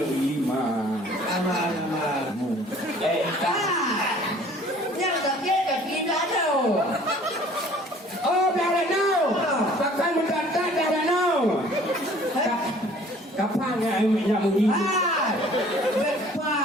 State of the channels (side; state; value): both; normal; correlation 0.53